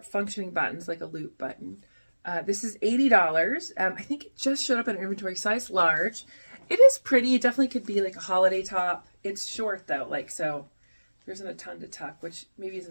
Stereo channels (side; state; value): both; inverted; correlation -1.00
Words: functioning buttons, like a loop button. This is $80. I think it just showed up in inventory, size large. It is pretty. It definitely could be like a holiday top. It's short though, like, so there isn't a ton to tuck, which maybe